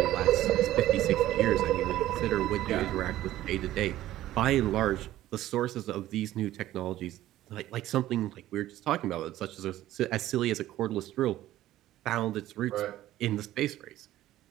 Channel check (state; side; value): quieter; left; 14.4 dB